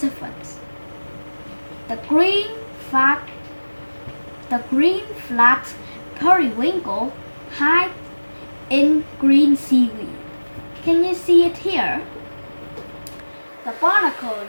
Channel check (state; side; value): inverted; both; correlation -1.00